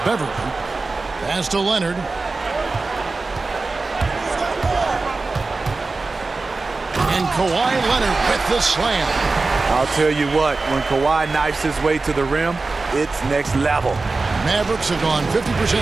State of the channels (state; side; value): quieter; left; 3.7 dB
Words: Pass to Leonard. And Kawhi Leonard with the slam. I'll tell you what, when Kawhi knifes his way to the rim, it's next level. Mavericks have gone 50%